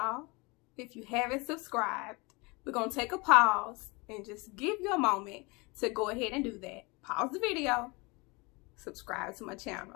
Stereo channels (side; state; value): right; quieter; 26.9 dB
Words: if you haven't subscribed, we're gonna take a pause and just give you a moment to go ahead and do that. Pause the video, subscribe to my